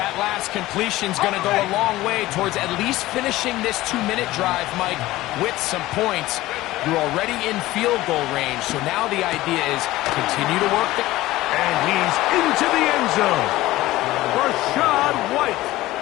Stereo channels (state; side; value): quieter; right; 17.1 dB